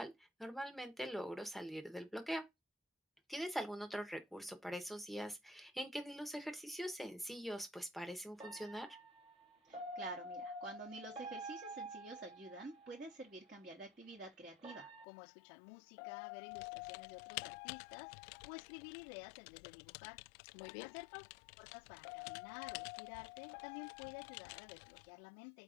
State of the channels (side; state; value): right; drops out; at 15.1 s